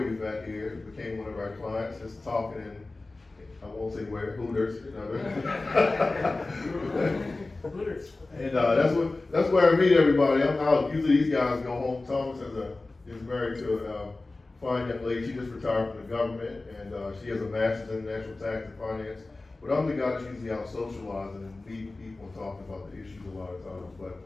we met here became one of our clients, just talking in, I won't say where, Hooters. Hooters. And that's where I meet everybody. I'm out. Usually these guys go home. Thomas is married to a fine young lady. She just retired from the government, and she has a master's in international tax and finance. But I'm the guy that's usually out socializing and meeting people and talking about the issues a lot of times. But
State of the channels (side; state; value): right; quieter; 3.2 dB